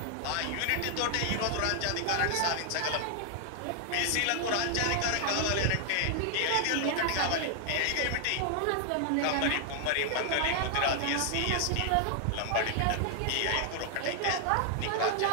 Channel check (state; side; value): different; both; correlation 0.00